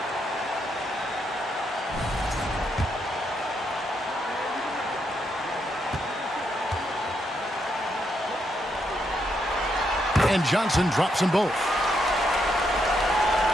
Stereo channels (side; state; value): both; normal; correlation 0.78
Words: And Johnson drops them both.